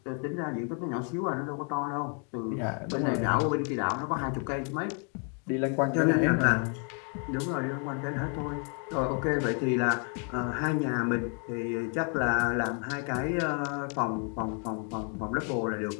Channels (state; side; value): quieter; right; 39.8 dB